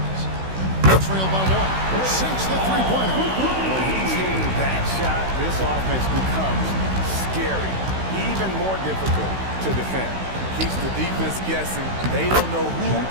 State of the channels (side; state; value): left; late; 16 ms